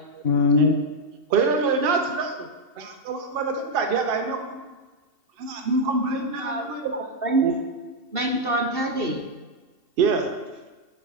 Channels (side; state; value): left; late; 2.7 ms